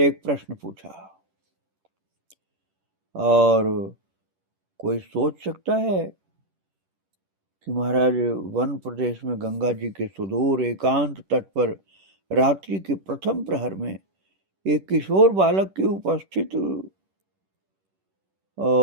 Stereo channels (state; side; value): late; left; 10 ms